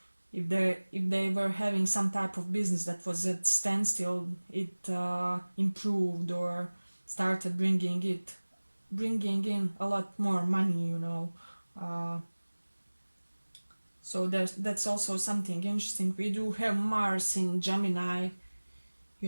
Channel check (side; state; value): both; inverted; correlation -1.00